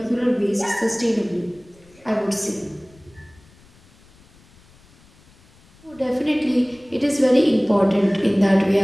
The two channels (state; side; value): noise; left; rumble, 29 dB below the sound